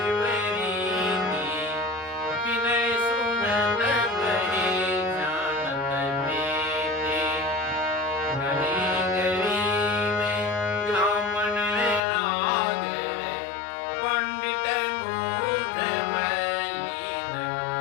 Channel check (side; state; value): right; drops out; at 12.0 s